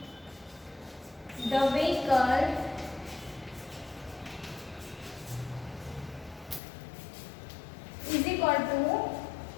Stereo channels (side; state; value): right; drops out; at 6.6 s